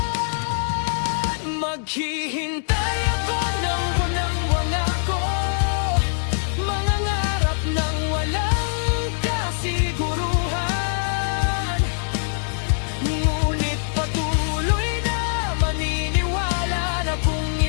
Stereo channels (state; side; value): silent; right; 63 dB below the other